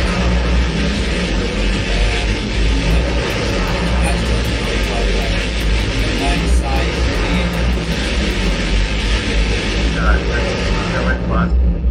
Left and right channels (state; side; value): identical; both; correlation 1.00